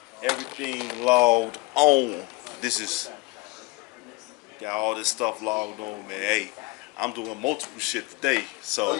everything logged on. This is got all this stuff logged on, man. Hey, I'm doing multiple shit today, so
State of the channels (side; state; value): right; quieter; 24.9 dB